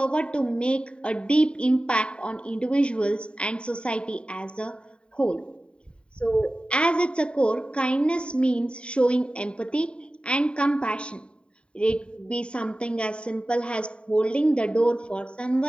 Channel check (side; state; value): right; late; 0.054 ms